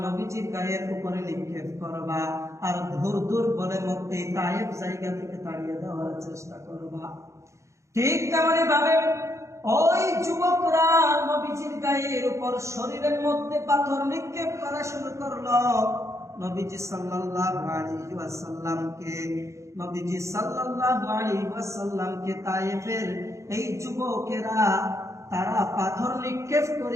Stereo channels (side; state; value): left; late; 0.14 ms